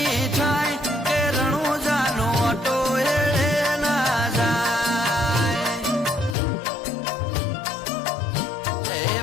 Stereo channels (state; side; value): drops out; right; at 6.4 s